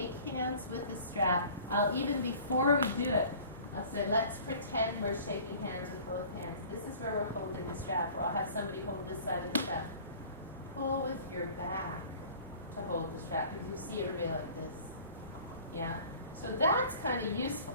hands with the strap. Even before we do it, I'll say, let's pretend we're shaking hands with both hands. This is where we're holding the strap, or I'll have somebody hold this side of the strap. Pull with your back to hold the strap, because you see everybody like this. Yeah? So that's kind of useful.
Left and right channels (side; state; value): both; inverted; correlation -0.47